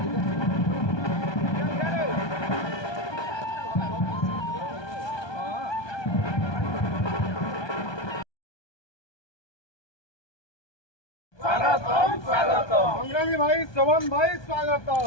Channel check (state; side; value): late; right; 1.2 ms